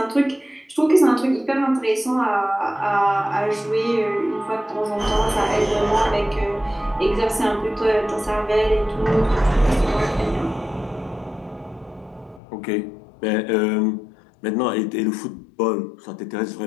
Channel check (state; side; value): drops out; right; at 12.4 s